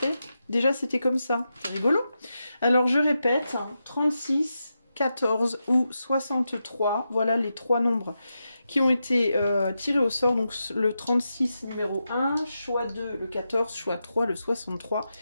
déjà c'était comme ça. C'est rigolo. Alors je répète, 36, 14 ou 63, voilà les 3 nombres qui ont été tirés au sort. Donc le 36 numéro 1, choix 2 le 14, choix 3 le 63.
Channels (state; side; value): inverted; both; correlation -0.88